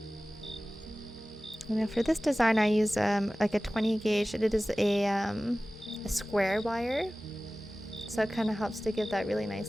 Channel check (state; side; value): normal; both; correlation 0.97